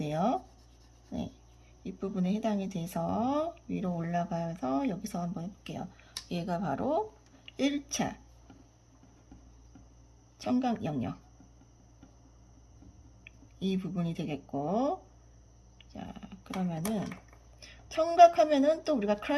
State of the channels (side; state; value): both; identical; correlation 1.00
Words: 네, 윗부분에 해당이 돼서 위로 올라가서 여기서 한번 해볼게요. 얘가 바로 1차 청각 영역. 이 부분이 되겠고, 자, 그러면은 청각하면은 또 우리가